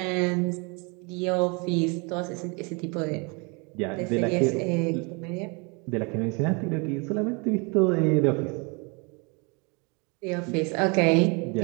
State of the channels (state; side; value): quieter; left; 31.3 dB